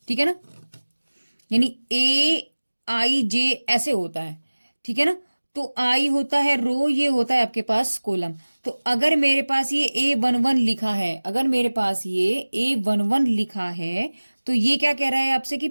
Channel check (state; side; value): inverted; both; correlation -1.00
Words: ठीक है ना, यानी AIJ ऐसे होता है, ठीक है ना। तो आई होता है रो, ये होता है आपके पास कॉलम। तो अगर मेरे पास ये A11 लिखा है, अगर मेरे पास ये A11 लिखा है तो ये क्या कह रहा है आपसे कि